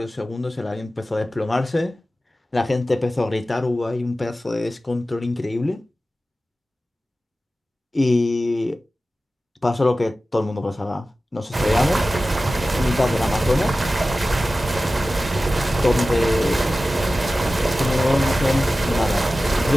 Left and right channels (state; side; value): normal; both; correlation 0.95